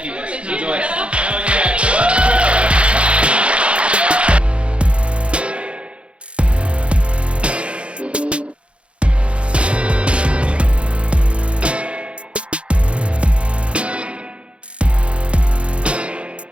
you guys. Enjoy.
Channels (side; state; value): left; late; 0.059 ms